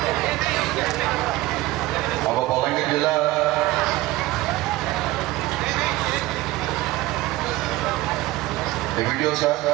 ଆମ ବଲାଙ୍ଗୀର ଜିଲ୍ଲା ଭିଡ଼ିଓ ସାର୍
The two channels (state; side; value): quieter; left; 18.1 dB